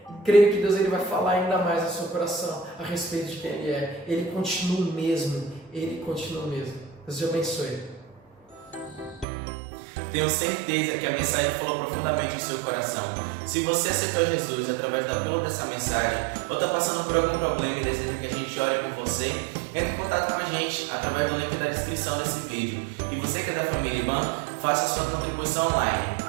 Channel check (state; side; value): drops out; left; at 9.2 s